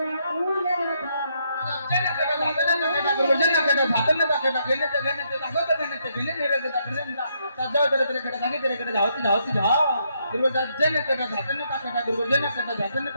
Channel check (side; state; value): both; inverted; correlation -0.75